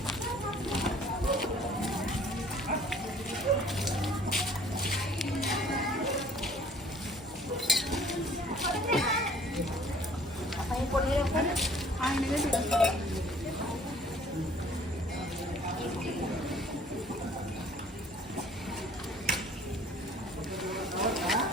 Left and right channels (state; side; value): normal; both; correlation 0.55